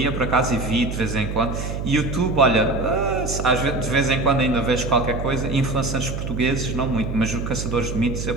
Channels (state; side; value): noise; right; hum, 5 dB below the sound